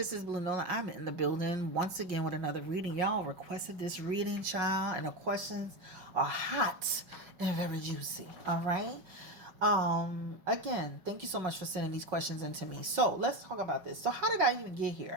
this is Blue Nola. I'm in the building once again with another reading. Y'all requested this reading, child, and the questions are hot and very juicy. All right. Again, thank you so much for sending these questions in to me. So let's talk about this. So how did I even get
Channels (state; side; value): late; left; 5.2 ms